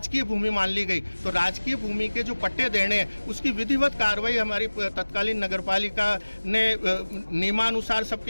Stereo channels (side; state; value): both; inverted; correlation -1.00